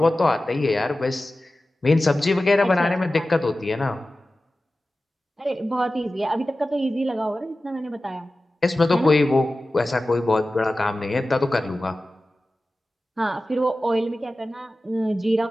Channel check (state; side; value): normal; both; correlation 0.95